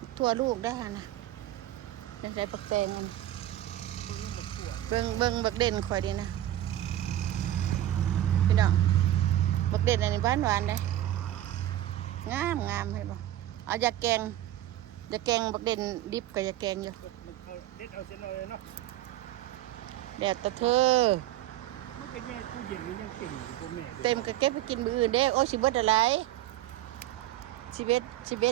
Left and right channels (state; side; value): quieter; left; 13.5 dB